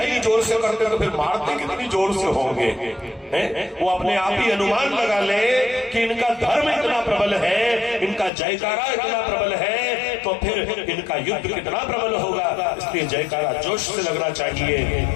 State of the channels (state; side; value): drops out; right; at 8.3 s